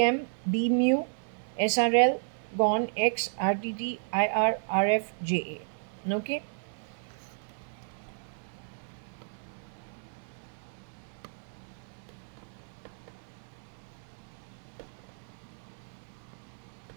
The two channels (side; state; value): left; silent; digital silence